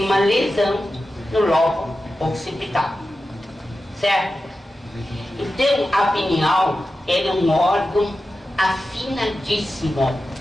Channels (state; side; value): normal; both; correlation 0.92